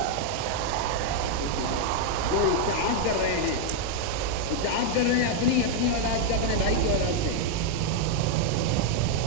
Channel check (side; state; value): both; different; correlation 0.00